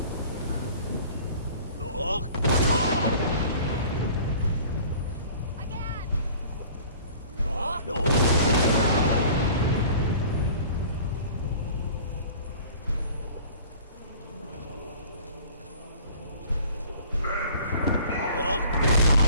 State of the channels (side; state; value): both; inverted; correlation -0.47